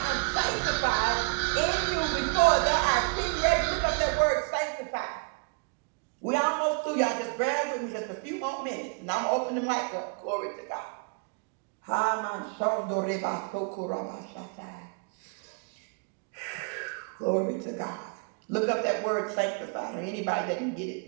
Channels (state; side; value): quieter; left; 34.7 dB